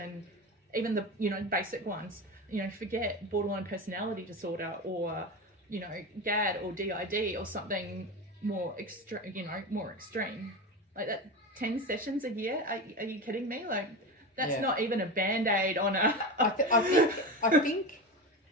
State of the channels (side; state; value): both; normal; correlation 0.23